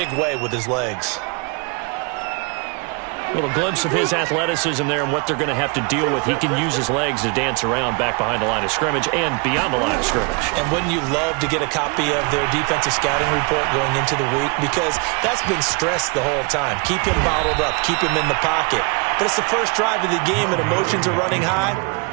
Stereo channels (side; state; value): left; quieter; 32.6 dB